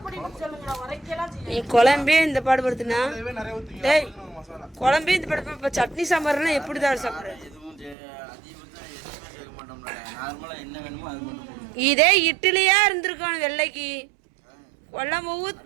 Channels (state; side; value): drops out; left; at 8.0 s